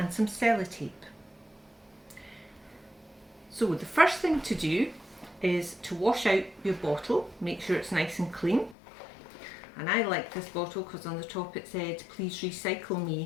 some sellotape. So the first thing to do is to wash out your bottle, make sure it's nice and clean. And I like this bottle because on the top it said, "Please recycle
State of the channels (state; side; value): drops out; right; at 8.8 s